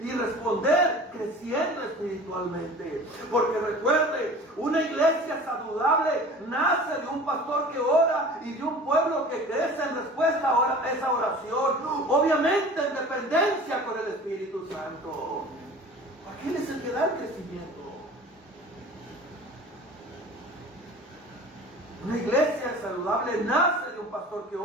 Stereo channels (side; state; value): both; normal; correlation 0.41